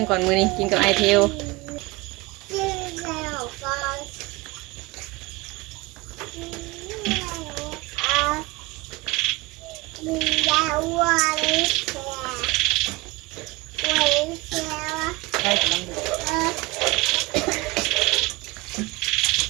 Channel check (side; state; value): left; quieter; 23.1 dB